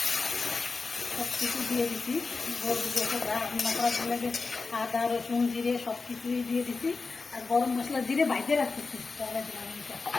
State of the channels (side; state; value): right; quieter; 4.2 dB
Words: সব কিছু দিয়ে দিচ্ছি। গরুর গোশে রান্না করার লাগে আদা রসুন জিরে সব কিছুই দিয়ে দিচ্ছি। আর গরম মশলা জিরে বাইরে রাখতেছি পরে দিলাম।